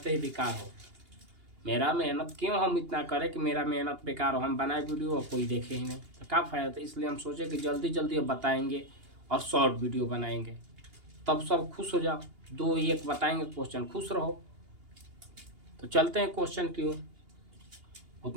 ही बेकार हो। मेरा मेहनत क्यों हम इतना करें कि मेरा मेहनत बेकार हो। हम बनाए वीडियो और कोई देखे ही नहीं तो क्या फ़ायदा। तो इसलिए हम सोचे कि जल्दी जल्दी अब बताएंगे और शॉर्ट वीडियो बनाएंगे, तब सब खुश हो जाओ। 2 1 बताएंगे क्वेश्चन, खुश रहो। तो चलते हैं क्वेश्चन की ओर।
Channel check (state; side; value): late; left; 2.8 ms